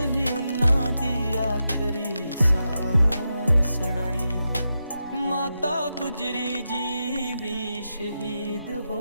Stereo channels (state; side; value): inverted; both; correlation -0.88